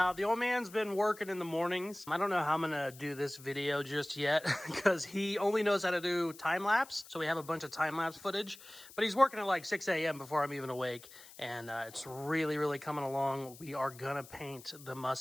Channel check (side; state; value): left; noise; hiss, 19 dB below the sound